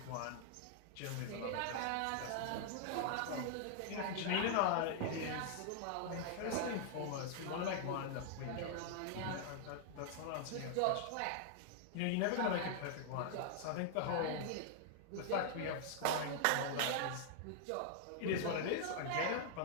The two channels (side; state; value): both; different; correlation -0.01